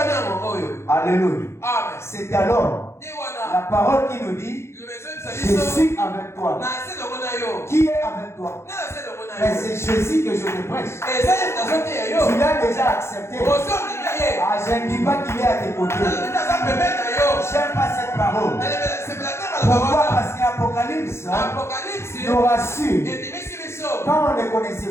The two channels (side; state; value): right; late; 0.13 ms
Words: Alléluia. C'est alors la parole qui nous dit, je suis avec toi. Qui est avec toi? Mais c'est Jésus que je te prêche. Tu l'as déjà accepté. Ah, je ne dis pas qu'il est à tes côtés. J'aime pas cette parole. Pourquoi? Parce qu'Apocalypse nous rassure. Quand on ne le